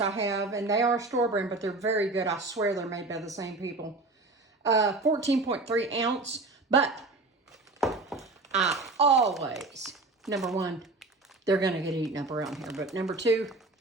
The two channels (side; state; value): left; quieter; 3.3 dB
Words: have, and they are store brand, but they're very good. I swear they're made by the same people. 14.3 ounce, but I always, number 1, they're gonna get eaten up around here, but number 2,